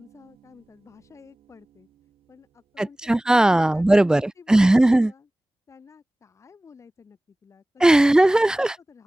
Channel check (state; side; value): normal; both; correlation 0.98